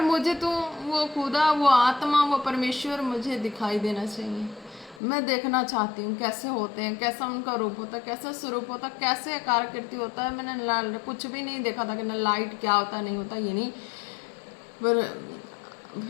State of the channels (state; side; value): drops out; right; at 5.0 s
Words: मुझे तो वो खुदा, वो आत्मा, वो परमेश्वर मुझे दिखाई देना चाहिए। मैं देखना चाहती हूँ कैसे होते हैं, कैसा उनका रूप होता है, कैसा स्वरूप होता है, कैसे आकृति होता है। मैंने कुछ भी नहीं देखा था कि ना लाइट क्या होता नहीं होता, ये नहीं। पर